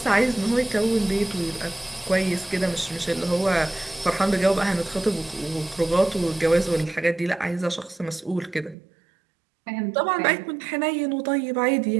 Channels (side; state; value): left; drops out; at 8.8 s